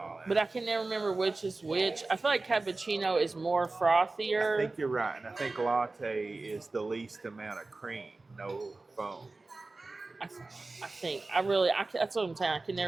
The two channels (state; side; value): quieter; left; 3.4 dB